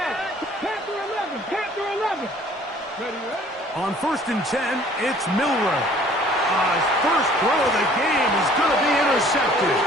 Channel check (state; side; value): normal; both; correlation 0.54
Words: 11, Panther 11. Ready? On 1st and 10, it's Milroe. His first throw of the game is going to be intercepted.